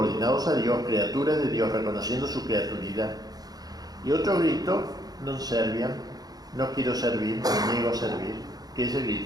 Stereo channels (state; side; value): late; left; 0.19 ms